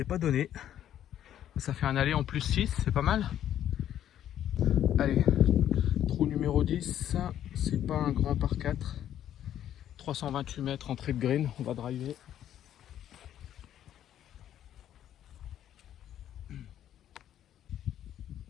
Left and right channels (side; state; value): right; quieter; 10.9 dB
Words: pas donné. Ça fait un aller en plus 6, c'est pas mal. Allez, trou numéro 10, c'est pas un grand par 4. 328 mètres entrée de green, on va driver.